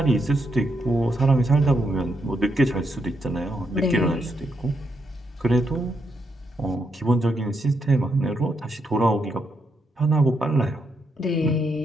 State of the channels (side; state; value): both; normal; correlation 0.80